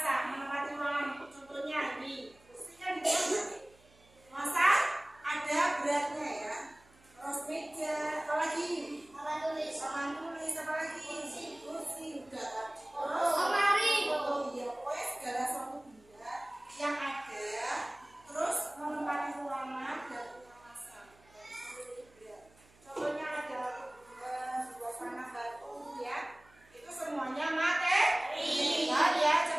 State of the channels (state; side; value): noise; right; hum, 28 dB below the sound